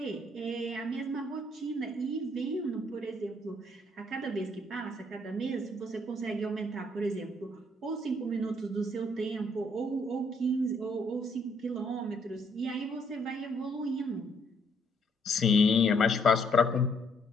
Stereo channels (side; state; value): both; normal; correlation 0.68